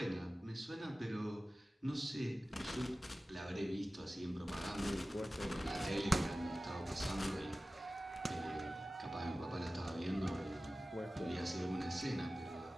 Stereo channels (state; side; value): normal; both; correlation 0.96